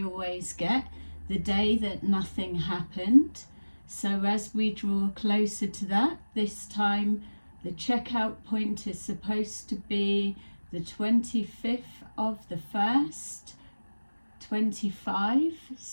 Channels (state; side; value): inverted; both; correlation -1.00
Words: always get, the day that nothing happened. So as we draw closer to that, this time the checkout point is supposed to be the 25th of the 1st, 25.